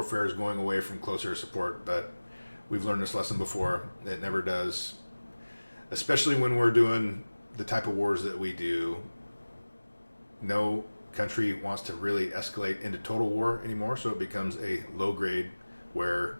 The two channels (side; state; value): both; inverted; correlation -1.00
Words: is going away from close air support, but we've learned this lesson before. It never does. Especially when we're doing the type of wars that we do, no country wants to really escalate into total war anymore, so it becomes a low grade where